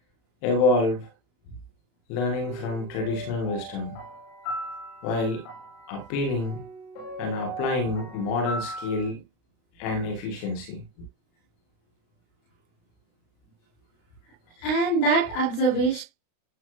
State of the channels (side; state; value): right; late; 35 ms